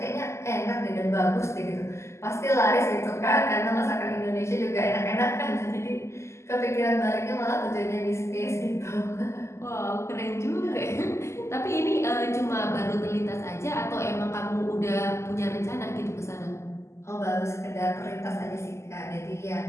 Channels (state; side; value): late; right; 0.13 ms